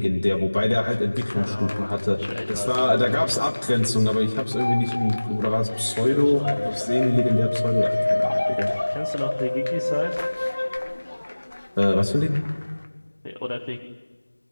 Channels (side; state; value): both; inverted; correlation -1.00